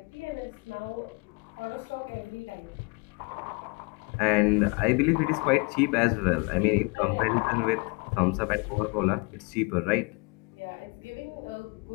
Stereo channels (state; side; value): quieter; right; 30.8 dB